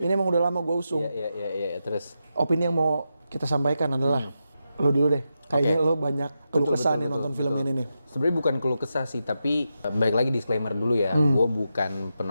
emang udah lama gue usung. Iya, terus. Opini yang mau kita sampaikan adalah, lo dulu deh. Kayaknya lo banyak keluh kesah nih nonton film ini nih. Sebenarnya bukan keluh kesah sih, tapi balik lagi disclaimer dulu ya. Gue bukan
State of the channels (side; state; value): both; inverted; correlation -0.87